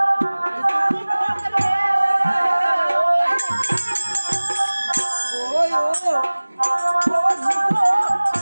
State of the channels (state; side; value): inverted; both; correlation -1.00